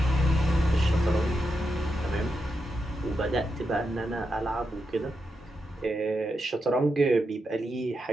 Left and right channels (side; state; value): both; normal; correlation 0.86